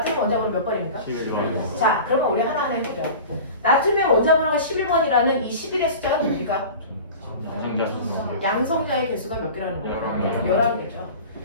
원자번호 몇 번입니까? 11번. 자, 그러면 우리 하나하나 해보자. 나트륨의 원자번호가 11번이라는 이 11의 숫자가 뭡니까? 양성자의 개수가 몇 개라는 거예요? 11개죠.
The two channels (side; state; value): both; inverted; correlation -0.36